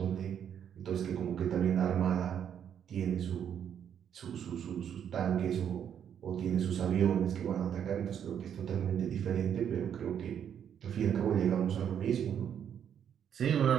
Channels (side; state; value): left; quieter; 8.8 dB